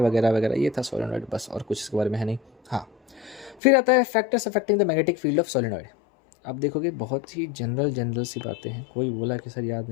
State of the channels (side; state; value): right; drops out; at 3.6 s